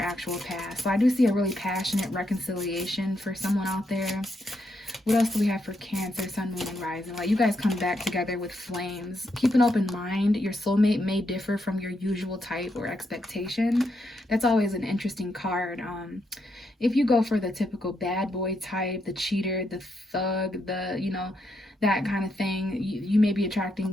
past. So I do see a really passionate reconciliation for someone out there. What else do we have for Cancer, Sun, Moon, and Rising? Like, you guys come back together with flames. Keep an open mind. Your soulmate may differ from your usual type or expectation. That's always an interesting card. If you go for the typical bad boy type, the cheater, the thug, that kind of thing, you may be attracting,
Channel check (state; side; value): normal; both; correlation 0.80